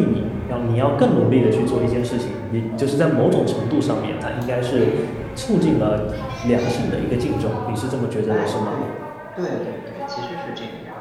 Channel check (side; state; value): both; identical; correlation 1.00